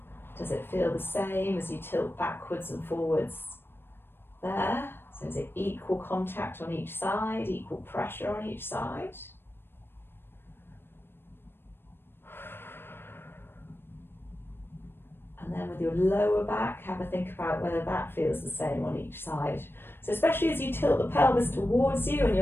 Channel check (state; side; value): late; right; 0.10 ms